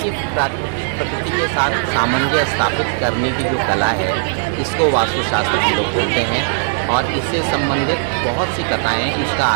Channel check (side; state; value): left; silent; digital silence